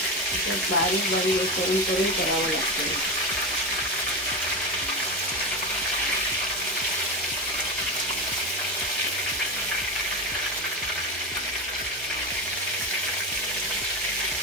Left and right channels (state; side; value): normal; both; correlation 0.18